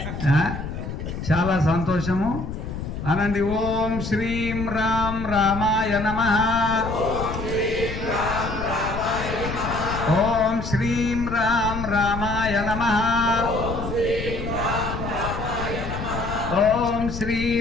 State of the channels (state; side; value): noise; left; rumble, 6 dB below the sound